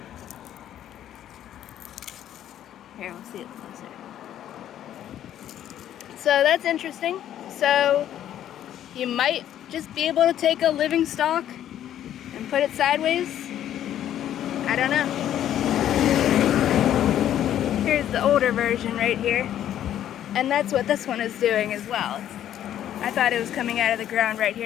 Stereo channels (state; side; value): quieter; right; 11.2 dB